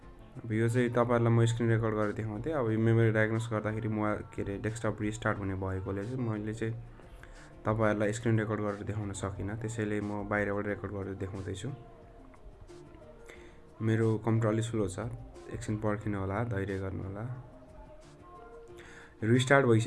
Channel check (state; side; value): identical; both; correlation 1.00